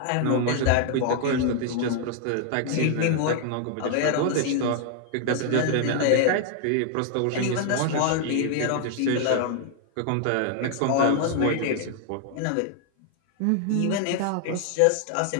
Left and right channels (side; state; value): both; different; correlation 0.00